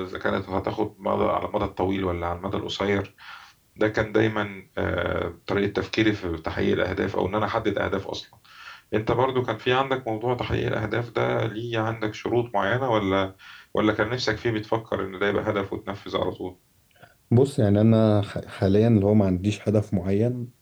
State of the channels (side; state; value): both; identical; correlation 1.00